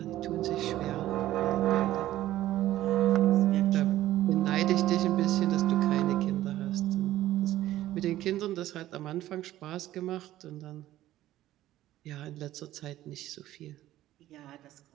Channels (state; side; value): quieter; left; 14.3 dB